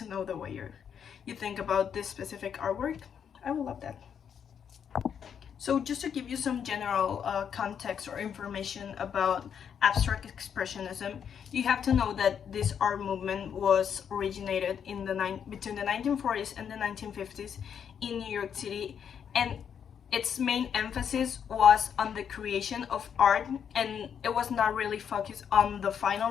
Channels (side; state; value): right; quieter; 7.9 dB